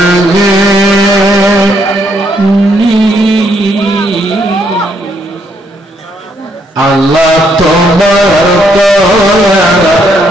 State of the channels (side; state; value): both; normal; correlation 0.73